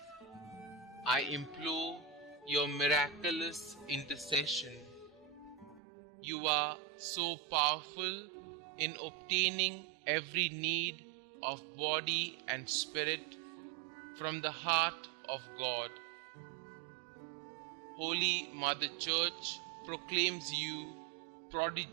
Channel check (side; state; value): left; drops out; at 5.8 s